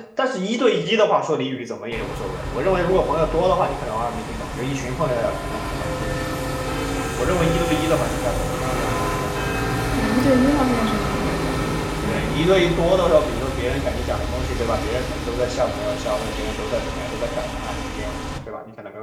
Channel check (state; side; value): identical; both; correlation 1.00